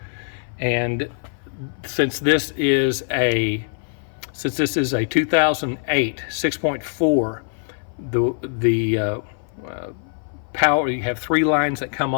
and since this is a 2008 6.4, the power, you have 3 lines that come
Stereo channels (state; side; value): silent; right; 57 dB below the other